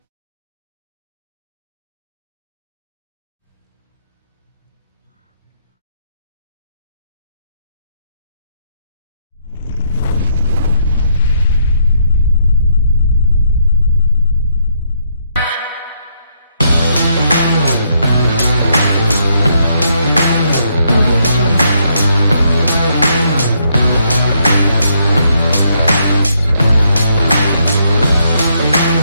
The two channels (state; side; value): inverted; both; correlation -0.74